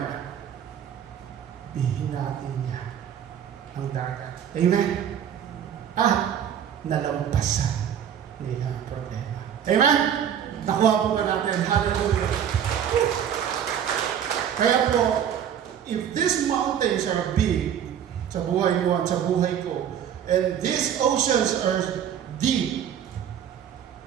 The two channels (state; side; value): quieter; left; 9.1 dB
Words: Bihinatin niya ang dagat. Amen? Nalampasan nila ang problema. Amen? Nakuha po ba natin? Hallelujah. Kaya po, if these mountains are big sa buhay mo at sa buhay ko, and these oceans are deep,